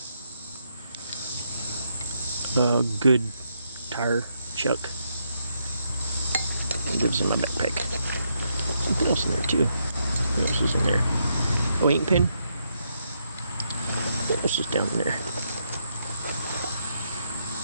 A good tire chuck. It lives in my backpack. Something else in there too. What else is in there? Oh, ink pen. What else is down there?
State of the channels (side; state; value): both; inverted; correlation -0.78